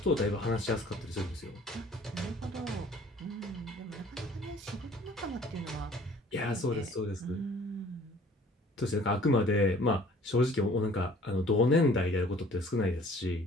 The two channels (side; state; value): both; normal; correlation 0.53